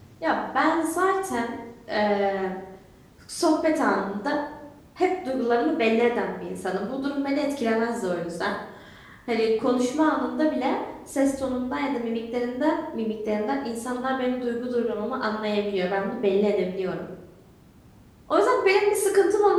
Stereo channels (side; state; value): both; identical; correlation 1.00